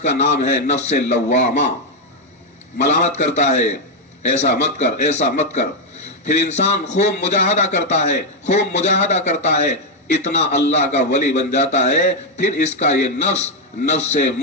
نام ہے نفس لوامہ. ملامت کرتا ہے، ایسا مت کر، ایسا مت کر. پھر انسان خوب مجاہدہ کرتا ہے، خوب مجاہدہ کرتا ہے، اتنا اللہ کا ولی بن جاتا ہے، پھر اس کا یہ نفس نفس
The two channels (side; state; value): both; normal; correlation 0.02